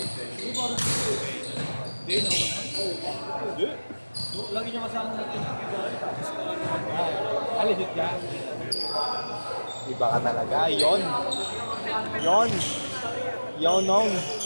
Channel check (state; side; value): inverted; both; correlation -1.00